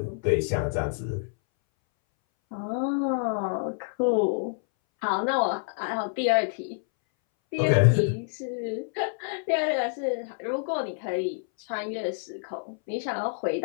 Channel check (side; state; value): right; silent; 60 dB below the other